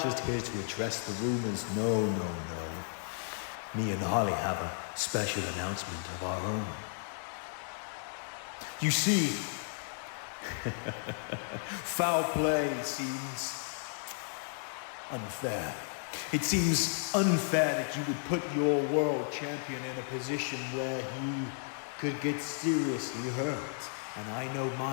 just here to address the rumors. No, no, no. Me and Holly have a special announcement of our own. You see, foul play seems unfair. It seems unfair that you would put your world champion in a position where he could get seriously hurt. And I know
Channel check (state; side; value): silent; right; 55 dB below the other